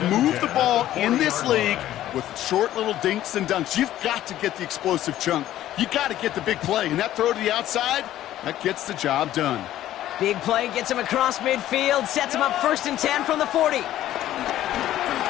move the ball in this league with short little dinks and dunks. You've got to get the explosive chunk. You got to get the big play. And that throw to the outside, that gets the job done. Big play gets him across midfield. Sets him up first and 10 from the 40.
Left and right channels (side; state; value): right; quieter; 13.2 dB